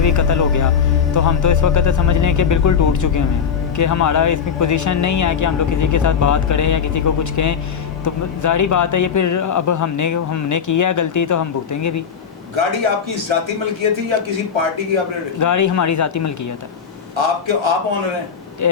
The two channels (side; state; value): right; quieter; 6.9 dB